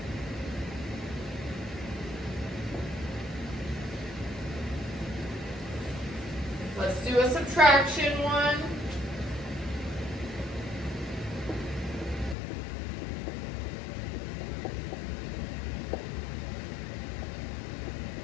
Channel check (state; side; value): drops out; right; at 12.4 s